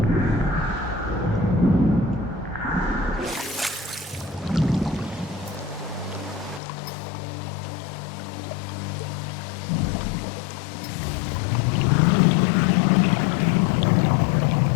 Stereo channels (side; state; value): right; drops out; at 6.6 s